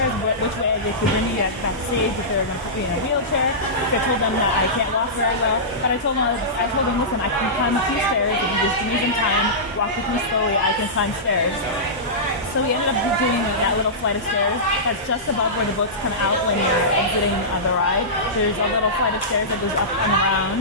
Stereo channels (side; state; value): both; normal; correlation -0.17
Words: which way they could bring me backstage, if they were going to put me in a wheelchair. So I told them that I can't walk very well, but I told them, listen, I can climb a few stairs. If you just give me some time, walk with me slowly, I can climb stairs. So we ended up doing that little flight of stairs that's just above where the boats come out when you're exiting the ride. There's a little flight of stairs that goes up and